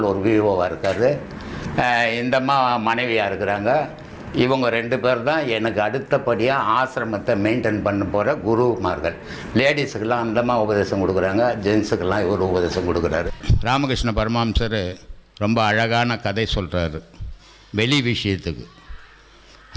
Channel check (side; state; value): both; identical; correlation 1.00